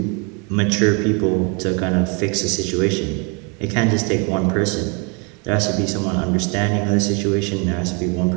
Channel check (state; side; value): quieter; left; 33.9 dB